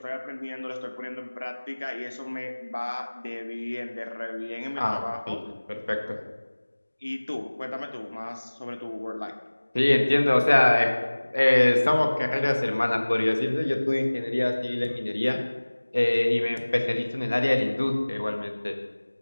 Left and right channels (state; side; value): inverted; both; correlation -1.00